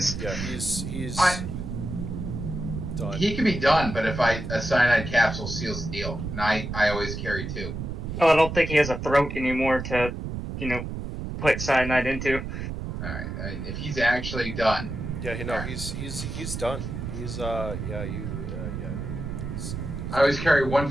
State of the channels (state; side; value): noise; right; rumble, 6 dB below the sound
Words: Yeah, he's done. He can be done, but if a cyanide capsule seals the deal, and I always carry 2. Oh, I don't think he has a throat anymore to, put cyanide into. All right, if he's actually done. Yeah, right. he's done. He's no. I always carry 1